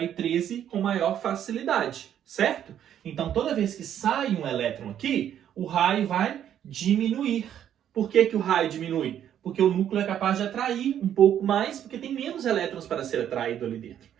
13 com maior facilidade, certo? Então, toda vez que sai um elétron aqui, o raio vai diminuir. Por que que o raio diminui? Porque o núcleo é capaz de atrair um pouco mais, porque tem menos elétrons para ser atraído ali dentro.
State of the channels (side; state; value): left; quieter; 10.1 dB